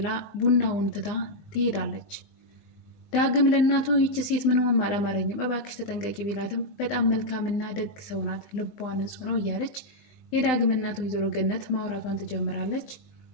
ቡናውን ትታ ትሄዳለች። ዳግም ለእናቱ ይቺ ሴት ምንም አላማረኝም እባክሽ ተጠንቀቂ ቢላትም በጣም መልካምና ደግ ሰው ናት፣ ልቧ ንጹሕ ነው እያለች የዳግም እናቱ ወይዘሮ ገነት ማውራቷን ትጀምራለች።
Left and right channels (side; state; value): right; late; 19 ms